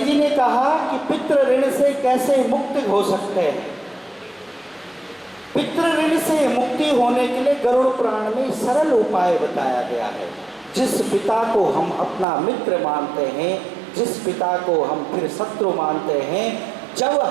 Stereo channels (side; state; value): left; drops out; at 12.2 s